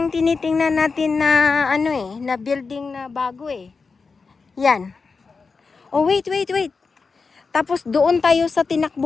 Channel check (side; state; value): right; quieter; 4.7 dB